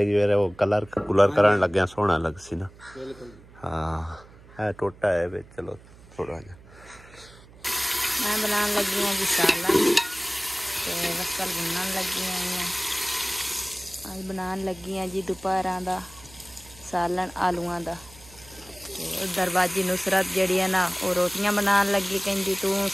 फिर वो कलर करन लगे सोहना लग सी ना। हाँ है टोटा है वे, चलो थोड़ा जा मैं बनाने लगी हूँ जी सालन ते वसल बुनन लगी हुई हैं। अज बनाने लगी हैं जी दोपहर का सालन आलूआं दा। ते उधर बाजी नुसरत जड़ी है ना वो रोटियां बनाने लगी, कहती तू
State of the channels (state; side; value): noise; right; hum, 22 dB below the sound